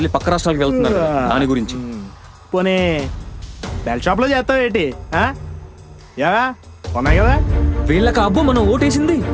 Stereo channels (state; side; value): identical; both; correlation 1.00